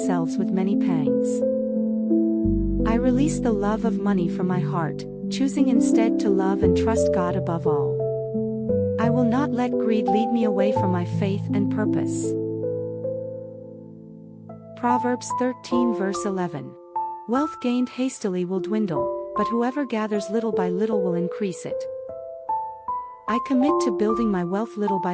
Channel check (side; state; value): both; identical; correlation 1.00